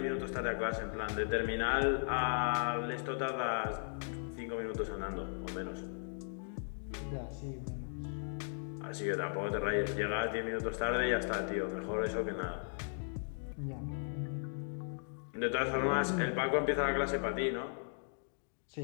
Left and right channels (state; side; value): silent; right; digital silence